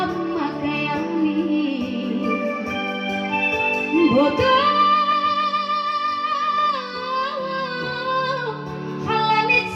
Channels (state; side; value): identical; both; correlation 1.00